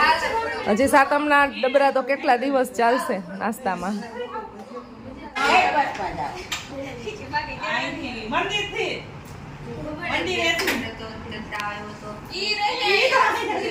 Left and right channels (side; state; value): both; identical; correlation 1.00